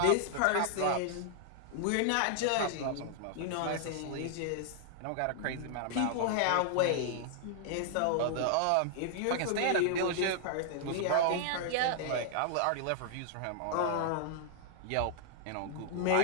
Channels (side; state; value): both; different; correlation -0.01